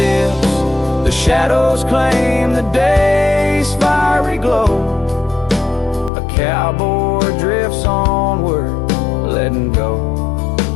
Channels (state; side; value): drops out; right; at 6.1 s